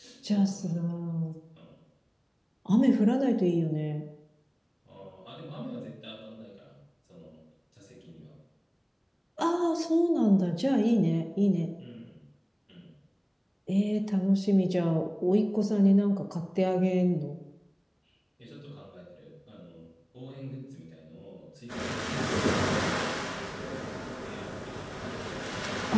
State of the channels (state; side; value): identical; both; correlation 1.00